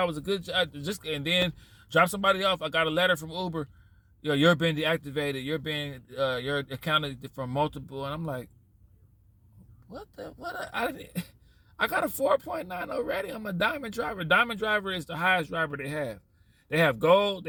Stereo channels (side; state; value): both; identical; correlation 1.00